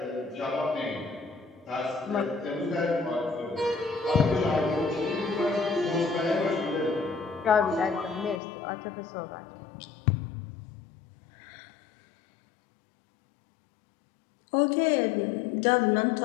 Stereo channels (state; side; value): drops out; right; at 8.4 s